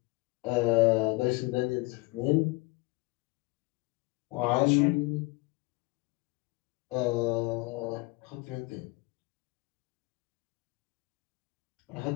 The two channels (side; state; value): right; quieter; 24.4 dB